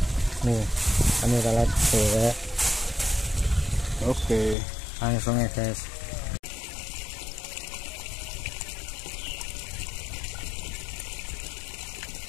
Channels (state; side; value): drops out; right; at 4.5 s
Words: Nih, umpannya pelet. Oke. Langsung ya guys.